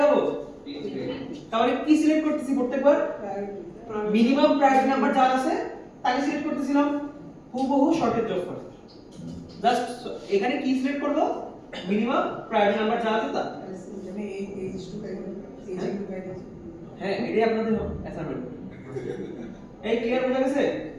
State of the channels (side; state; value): both; identical; correlation 1.00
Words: তাহলে কি সিলেক্ট করতেছি প্রত্যেকবার, মিনিমাম প্রায়োরিটি নাম্বার যার আছে তাকে সিলেক্ট করতেছিলাম, হুবহু শর্টেজ অফ ফার্স্ট। জাস্ট এখানে কি সিলেক্ট করব, মিনিমাম প্রায়োরিটি নাম্বার যা আছে তা। মানে এই ইস্যু গাইড হ্যাঁ, এটাই আপনাদের অ্যাসাইনমেন্ট। এই ক্লিয়ার হয়ে গেছে?